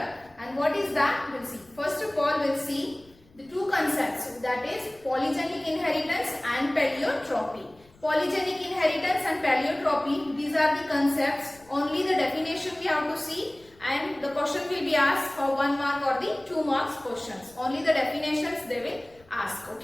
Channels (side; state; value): left; noise; rumble, 29 dB below the sound